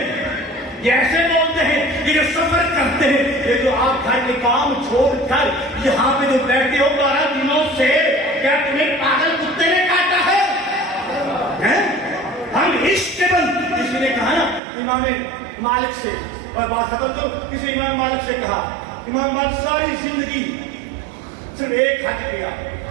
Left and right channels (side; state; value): left; drops out; at 14.6 s